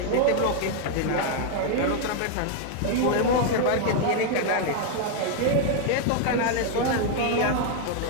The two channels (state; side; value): different; both; correlation 0.00